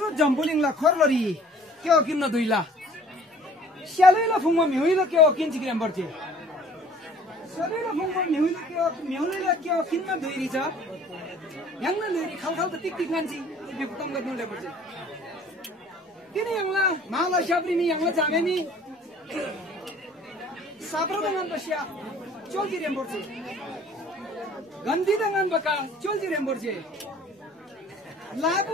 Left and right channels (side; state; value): both; normal; correlation 0.52